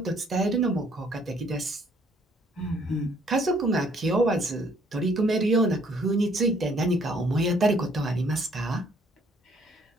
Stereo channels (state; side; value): normal; both; correlation 0.63